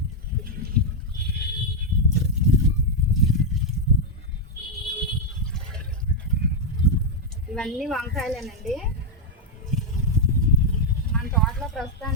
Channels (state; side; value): normal; both; correlation -0.01